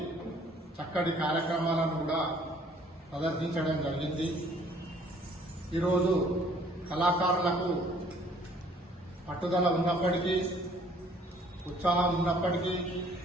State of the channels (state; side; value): normal; both; correlation 0.58